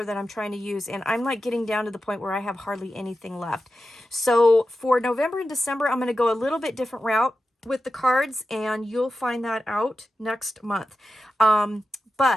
that I'm trying to use, and I'm like getting down to the point where I have hardly anything left. So for November and December, I'm going to go a little bit different route with the cards, and you'll find that out next month.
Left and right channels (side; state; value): both; normal; correlation 0.92